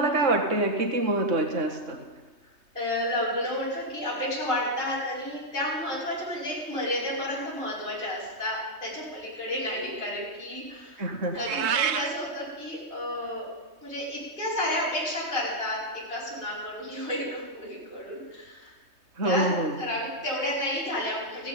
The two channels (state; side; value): late; left; 3.2 ms